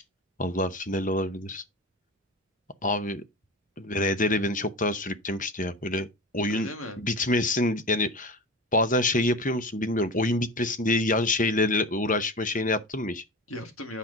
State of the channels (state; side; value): normal; both; correlation 0.30